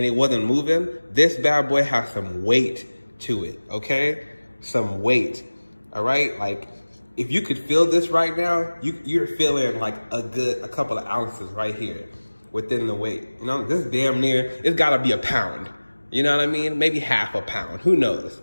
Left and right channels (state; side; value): inverted; both; correlation -1.00